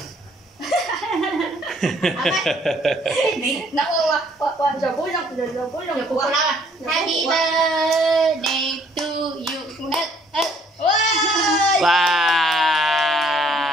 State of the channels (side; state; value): both; normal; correlation 0.62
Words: Nắm qua giờ cuối năm giờ cuối năm của Happy birthday to you. Wow.